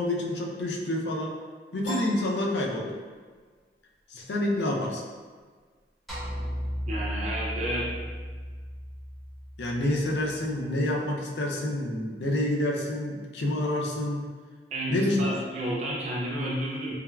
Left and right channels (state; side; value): normal; both; correlation 0.58